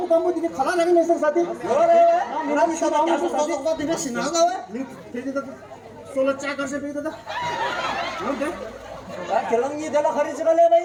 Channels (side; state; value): both; identical; correlation 1.00